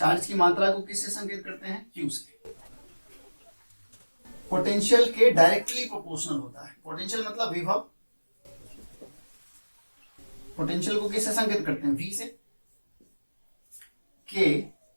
की मात्रा को किससे संकेत करते हैं? Q से। पोटेंशियल के डायरेक्टली प्रोपोर्शनल होता है। पोटेंशियल मतलब विभव, पोटेंशियल को किससे संकेत करते हैं? V से। के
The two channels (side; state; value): both; inverted; correlation -1.00